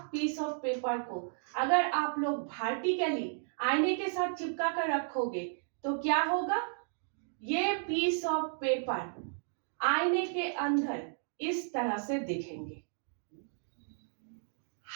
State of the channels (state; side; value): silent; left; digital silence